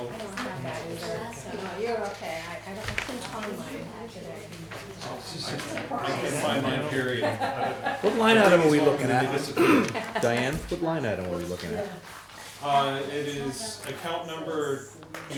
don't have that either, so no, you're okay. I couldn't find mine today. I can find my period. What line item are we looking They at? disappeared. Diane, what line item are we looking at? It is account number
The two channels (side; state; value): both; identical; correlation 1.00